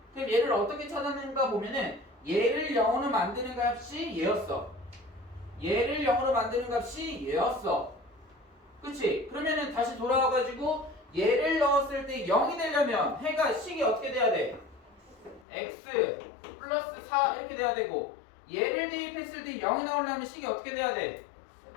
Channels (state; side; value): drops out; right; at 15.5 s